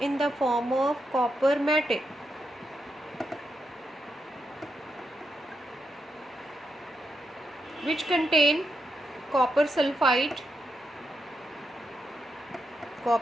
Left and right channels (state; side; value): normal; both; correlation 0.83